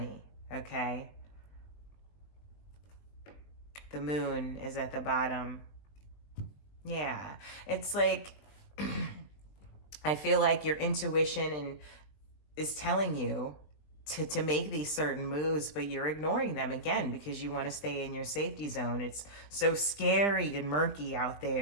okay? The Moon is at the bottom. Yeah, it's like, I feel like your intuition is telling you to make these certain moves, but you're ignoring them again because you want to stay in your safety zone. It's so scary and murky out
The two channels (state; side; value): late; right; 20 ms